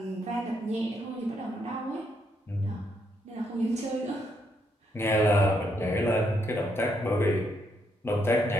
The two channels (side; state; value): both; normal; correlation 0.76